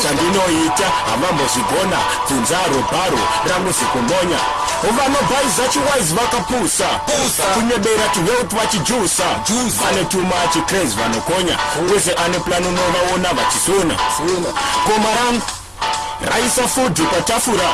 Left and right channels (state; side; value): identical; both; correlation 1.00